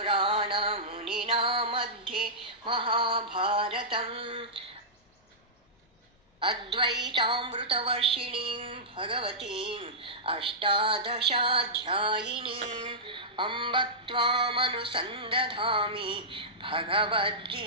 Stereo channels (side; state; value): both; normal; correlation -0.15